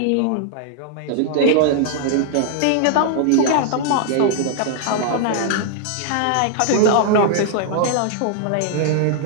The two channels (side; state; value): both; different; correlation 0.00